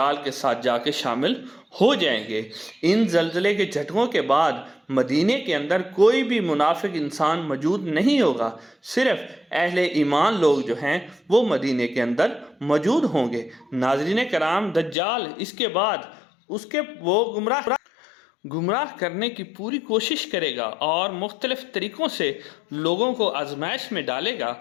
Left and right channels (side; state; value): right; drops out; at 15.0 s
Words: کے ساتھ جا کے شامل ہو جائیں گے۔ ان زلزلے کے جھٹکوں کے بعد مدینے کے اندر کوئی بھی منافق انسان موجود نہیں ہوگا، صرف اہل ایمان لوگ جو ہیں وہ مدینے کے اندر موجود ہوں گے۔ ناظرین کرام، دجال اس کے بعد وہ گمراہ کرنے کی پوری کوشش کرے گا، اور مختلف طریقوں سے لوگوں کو آزمائش میں ڈالے گا۔